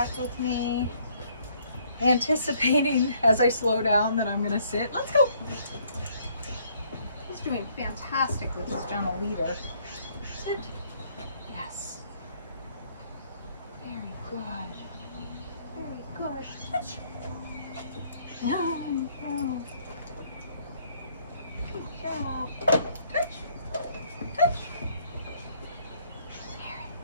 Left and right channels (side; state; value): both; inverted; correlation -0.65